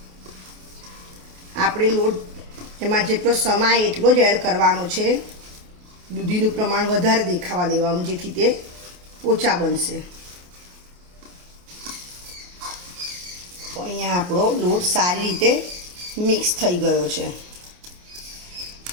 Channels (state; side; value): late; left; 28 ms